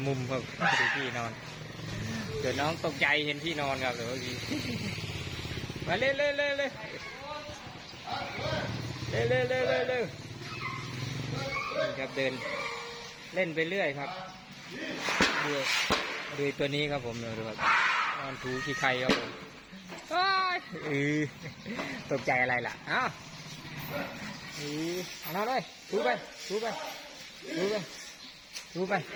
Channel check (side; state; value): both; identical; correlation 1.00